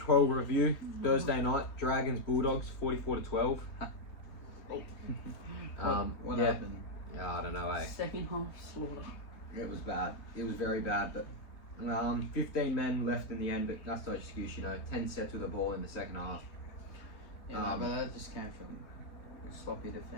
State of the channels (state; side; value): late; right; 3.3 ms